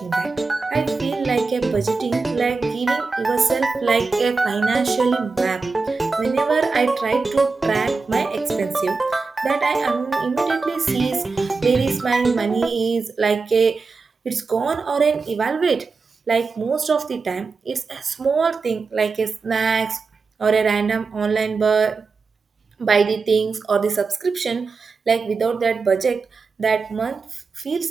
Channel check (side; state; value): left; quieter; 4.4 dB